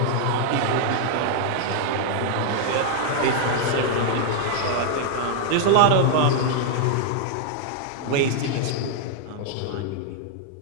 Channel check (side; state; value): both; different; correlation 0.00